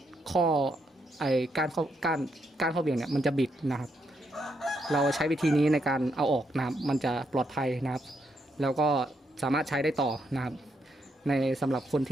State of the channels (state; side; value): normal; both; correlation 0.78